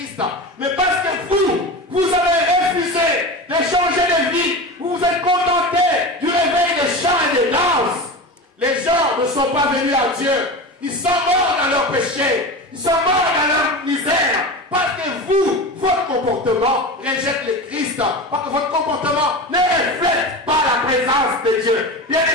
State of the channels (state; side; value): normal; both; correlation 0.27